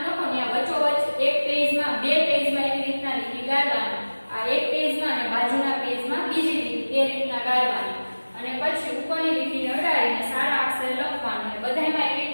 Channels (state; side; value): inverted; both; correlation -1.00